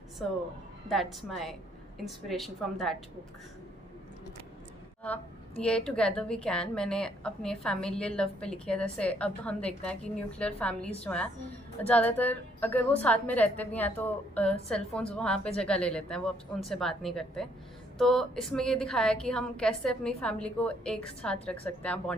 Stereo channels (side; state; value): both; normal; correlation 0.68